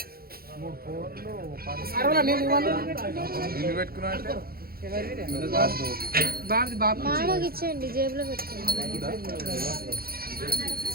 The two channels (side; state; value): left; late; 0.44 ms